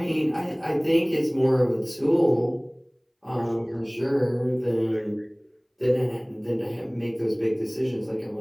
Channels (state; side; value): identical; both; correlation 1.00